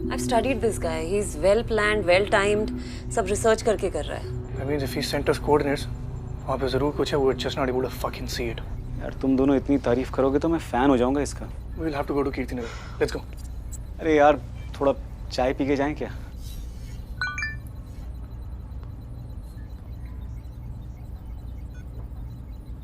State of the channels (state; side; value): identical; both; correlation 1.00